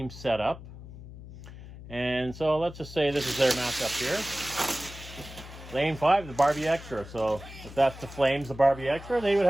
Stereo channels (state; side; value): noise; left; hum, 15 dB below the sound